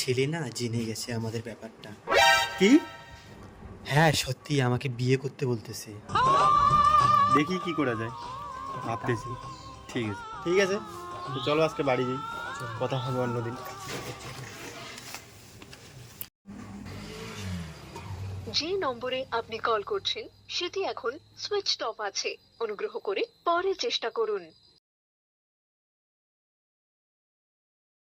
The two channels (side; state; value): both; identical; correlation 1.00